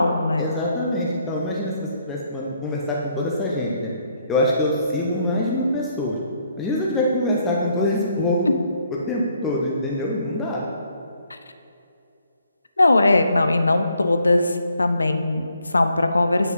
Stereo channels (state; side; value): inverted; both; correlation -0.70